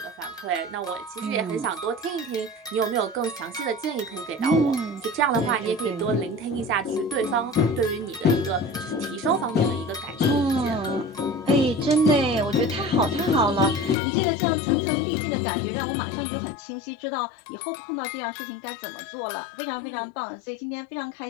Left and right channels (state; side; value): drops out; right; at 14.0 s